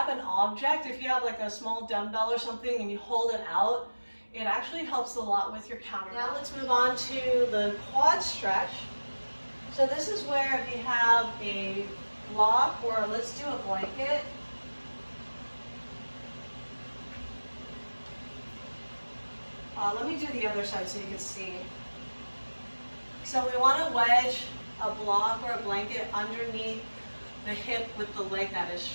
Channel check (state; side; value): inverted; both; correlation -1.00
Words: an object. If you have like a small dumbbell or something and you hold it out, it actually helps a lot with your counterbalance. Now let's move on to the quad stretch. So this is where if you have a block, or let's do a blanket. Let me do the other side so you can see. So we want to wedge a block or a blanket underneath the hip with the leg that is